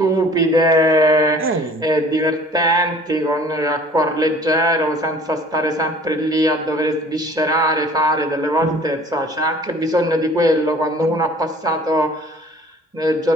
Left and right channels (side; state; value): both; normal; correlation 0.50